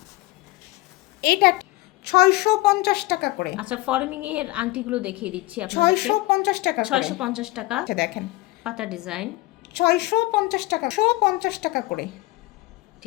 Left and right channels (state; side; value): quieter; right; 20.1 dB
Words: এইটা 650 টাকা করে। আচ্ছা, ফর্মিং এর আংটিগুলো দেখিয়ে দিচ্ছি আপনাদেরকে। 650 টাকা, 650 টাকা। আচ্ছা দেখেন, পাতা ডিজাইন 650 টাকা, 650 টাকা করে।